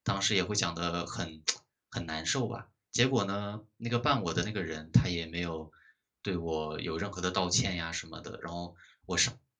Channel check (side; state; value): both; identical; correlation 1.00